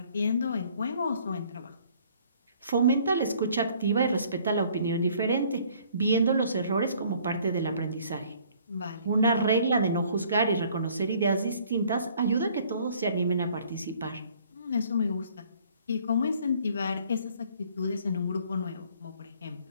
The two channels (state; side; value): inverted; both; correlation -0.58